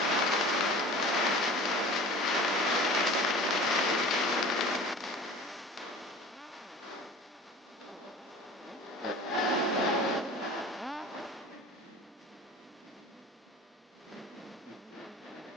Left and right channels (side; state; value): both; normal; correlation 0.40